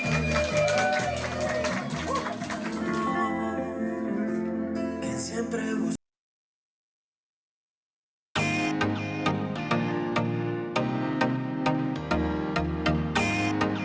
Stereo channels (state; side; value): identical; both; correlation 1.00